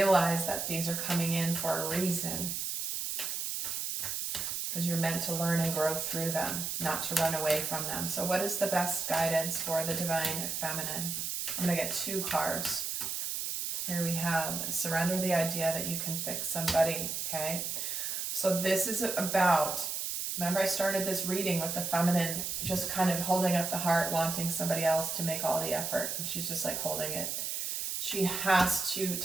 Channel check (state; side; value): noise; right; hiss, 2 dB below the sound